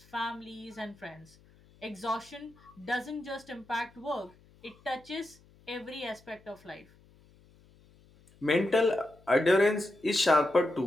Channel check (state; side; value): noise; left; hum, 28 dB below the sound